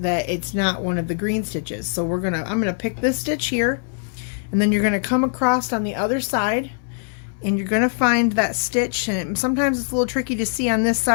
that it's not one of the green stitches. So I'm going to pick this stitch here, and then you're going to come across on the other side, and you're going to find that stitch. And sometimes it's a little tricky to see on this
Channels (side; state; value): right; silent; 64 dB below the other